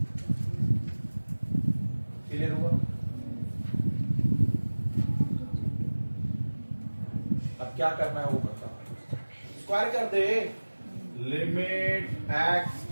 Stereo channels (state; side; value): inverted; both; correlation -1.00